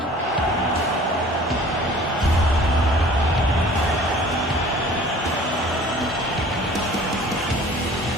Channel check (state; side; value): normal; both; correlation 0.48